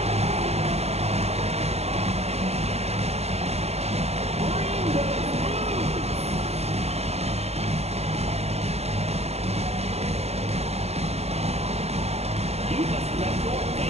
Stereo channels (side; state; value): left; late; 0.30 ms